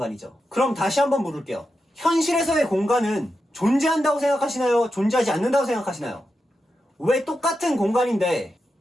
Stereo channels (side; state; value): both; normal; correlation 0.88